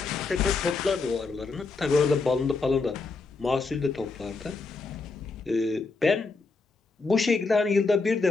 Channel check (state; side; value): quieter; right; 4.0 dB